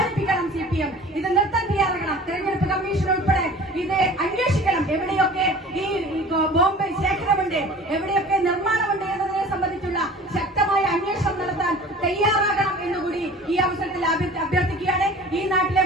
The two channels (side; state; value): both; normal; correlation 0.43